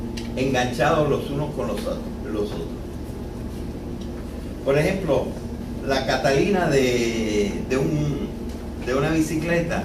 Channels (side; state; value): both; identical; correlation 1.00